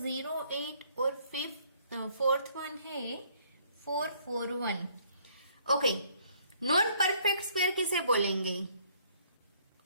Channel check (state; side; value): inverted; both; correlation -0.63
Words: और फोर्थ वन है 441। ओके, नॉन परफेक्ट स्क्वायर किसे बोलेंगे?